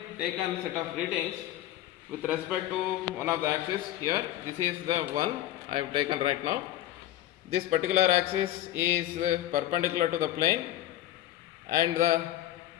taken set of readings with respect to one of the axis here. This is the one I have taken right now. This particular axis is perpendicular to the plane, and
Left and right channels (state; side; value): quieter; right; 13.5 dB